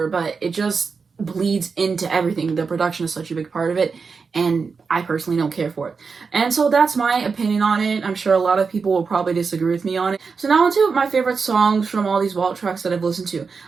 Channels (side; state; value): left; quieter; 5.1 dB